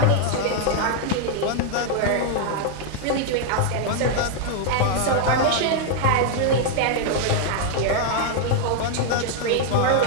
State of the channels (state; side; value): different; both; correlation 0.00